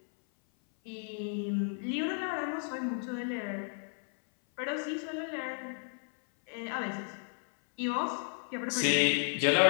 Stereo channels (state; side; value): silent; right; 56 dB below the other